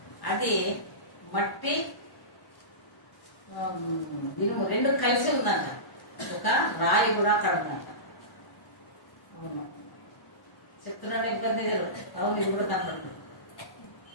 అది మట్టి ఇనుము రెండు కలిసి ఉందంట. ఒక రాయి కూడా అక్కడ ఉందంట. అవును చెప్తున్నాడు, ఇబ్బంది జరుగుతుంది. అవును, ఇది కూడా కనపడుతుంది.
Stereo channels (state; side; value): late; right; 1.1 ms